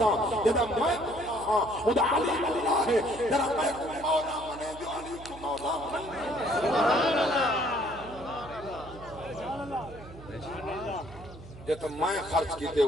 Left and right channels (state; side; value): noise; right; hum, 16 dB below the sound